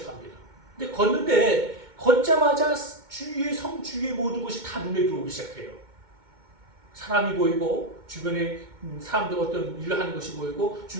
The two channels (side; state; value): left; late; 2.2 ms